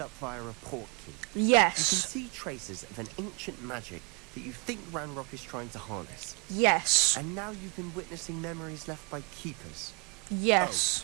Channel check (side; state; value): left; quieter; 35.3 dB